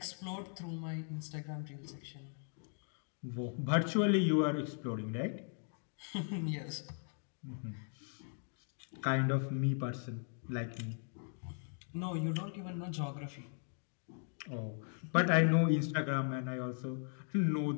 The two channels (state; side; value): silent; right; 52 dB below the other